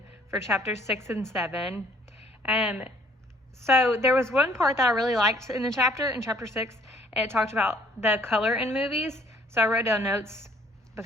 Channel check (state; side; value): normal; both; correlation 0.60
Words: for chapters 6 and 7. So there was one part that I really liked in chapter 6. It talked about the color in movies. So I wrote down notes